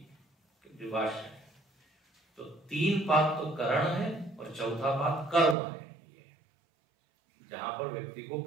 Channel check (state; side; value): drops out; left; at 5.6 s